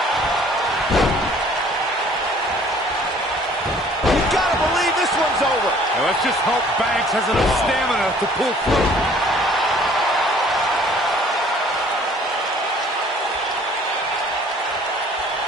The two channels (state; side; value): normal; both; correlation 0.55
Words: You gotta believe this one's over. Now let's just hope Banks has enough stamina to pull through.